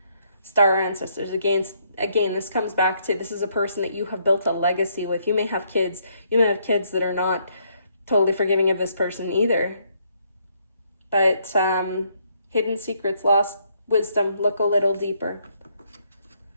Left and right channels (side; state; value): both; inverted; correlation -0.71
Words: Star ancestors, again, this comes back to, this is a person that you have built a legacy with. You may have kids that are not totally forgiving of this person either. But hidden secrets, lost wisdom, look a little deeper.